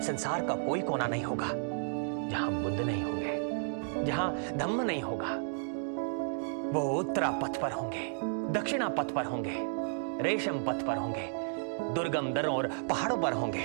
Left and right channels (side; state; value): left; silent; digital silence